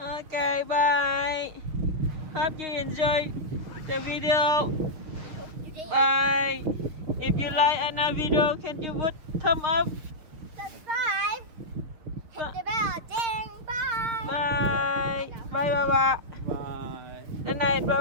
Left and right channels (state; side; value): late; left; 6.5 ms